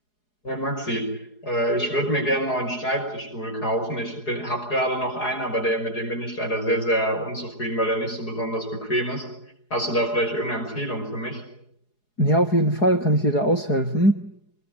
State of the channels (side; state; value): right; late; 4.8 ms